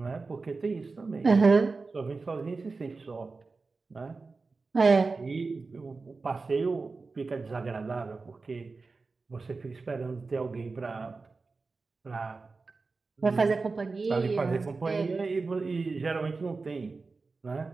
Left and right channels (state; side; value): quieter; left; 4.1 dB